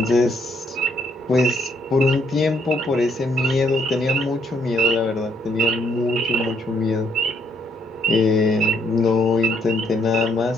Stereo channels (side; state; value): both; normal; correlation 0.70